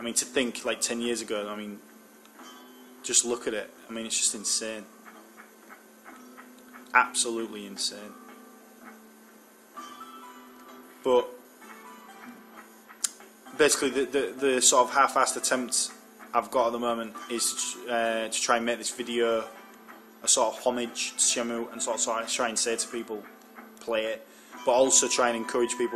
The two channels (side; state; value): both; identical; correlation 1.00